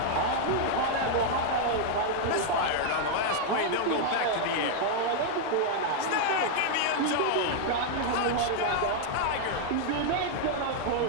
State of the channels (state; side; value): different; both; correlation -0.01